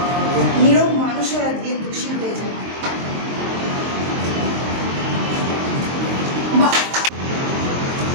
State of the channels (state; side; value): late; left; 23 ms